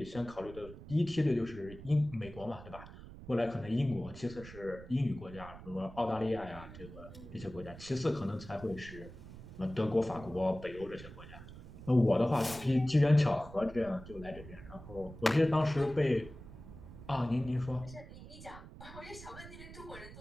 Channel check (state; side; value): noise; right; rumble, 15 dB below the sound